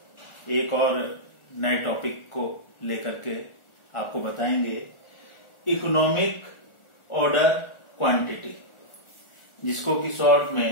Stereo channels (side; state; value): right; late; 1.4 ms